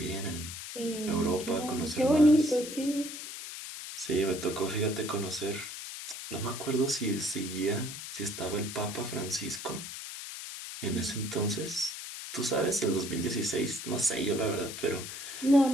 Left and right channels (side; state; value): left; noise; hiss, 9 dB below the sound